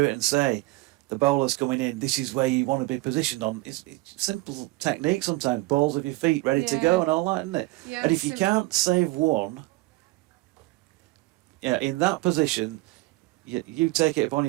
it and say, the bowler's coming in, this is where you want to be positioned on. It's simple technique sometimes, balls of your feet ready to go and all that, isn't it? Yeah, and if you can't save one, in that position, you take it upon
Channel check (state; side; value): quieter; left; 21.2 dB